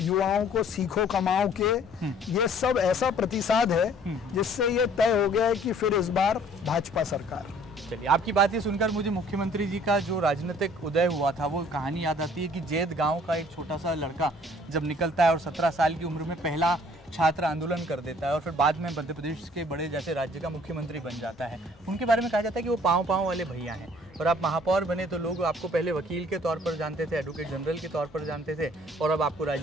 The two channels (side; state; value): both; normal; correlation 0.56